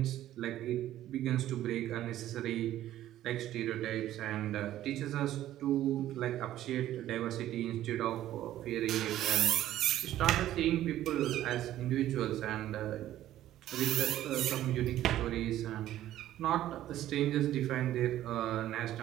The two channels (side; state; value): left; quieter; 13.2 dB